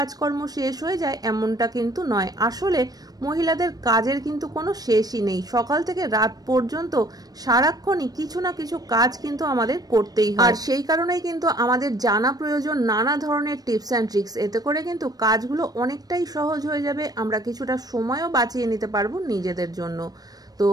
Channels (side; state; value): left; late; 0.19 ms